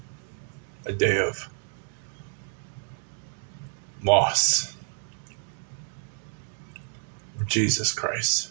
a day of loss of Jesus Christ.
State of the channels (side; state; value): left; silent; digital silence